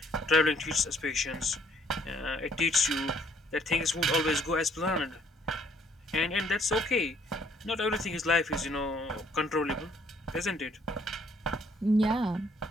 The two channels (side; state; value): both; normal; correlation 0.65